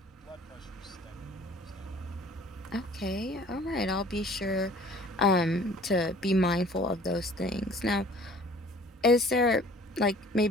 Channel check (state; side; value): normal; both; correlation 0.51